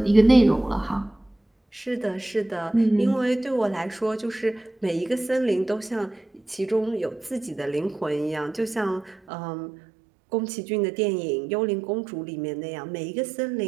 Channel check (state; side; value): drops out; left; at 9.2 s